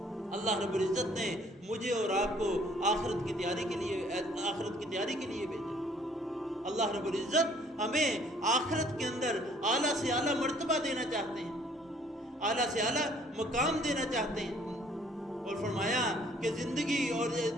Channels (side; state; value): both; normal; correlation 0.59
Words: اللہ رب العزت نے مجھے اور آپ کو آخرت کی تیاری کے لیے بھیجا۔ اللہ رب العزت ہمیں آخرت کے اندر اعلیٰ سے اعلیٰ مرتبہ دینا چاہتے ہیں، اعلیٰ سے اعلیٰ مقام دینا چاہتے ہیں، اور فرمایا کہ زندگی اور